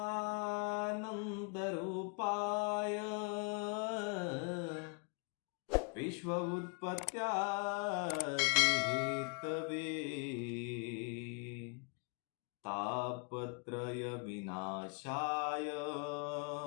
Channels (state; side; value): quieter; right; 36.1 dB